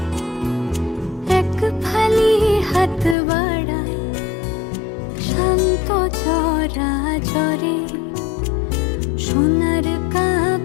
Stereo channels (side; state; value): right; drops out; at 3.2 s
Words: এক ফালি হাত বাড়ায় শান্ত চরাচরে। সোনার